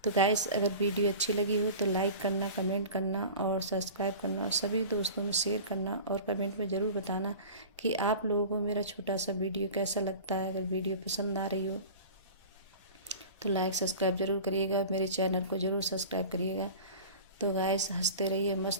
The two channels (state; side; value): inverted; both; correlation -0.37